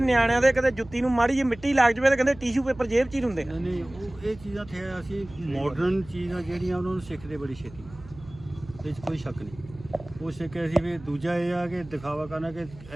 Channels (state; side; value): noise; right; hum, 19 dB below the sound